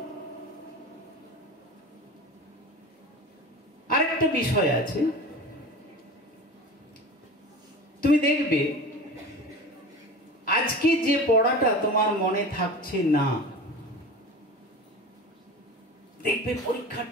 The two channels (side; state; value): both; normal; correlation 0.34